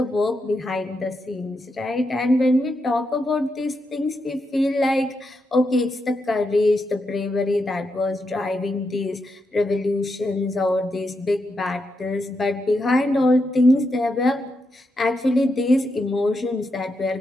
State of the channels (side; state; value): both; normal; correlation 0.84